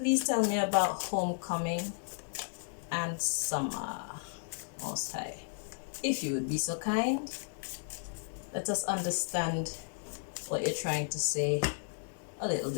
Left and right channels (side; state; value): right; silent; digital silence